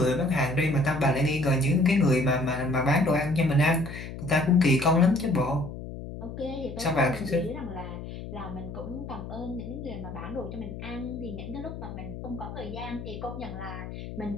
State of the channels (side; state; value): left; noise; hum, 10 dB below the sound